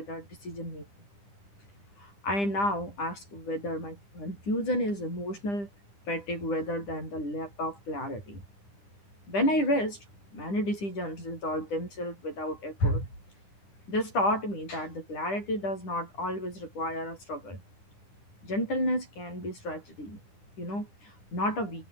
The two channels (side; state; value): right; late; 10 ms